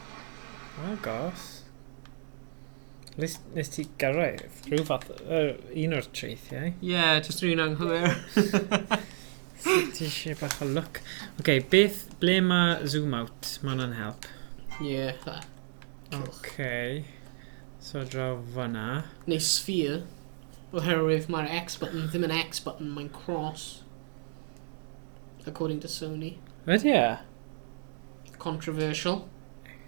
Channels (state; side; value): silent; left; digital silence